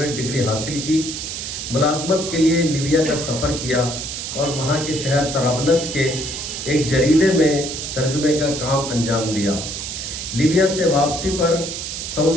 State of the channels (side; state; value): right; noise; hiss, 6 dB below the sound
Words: ڈگری حاصل کی۔ ملازمت کے لیے لیبیا کا سفر کیا اور وہاں کے شہر طرابلس کے ایک جریدے میں ترجمے کا کام انجام دیا۔ لیبیا سے واپسی پر